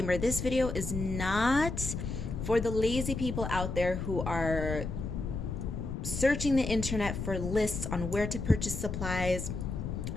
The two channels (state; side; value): noise; left; rumble, 4 dB below the sound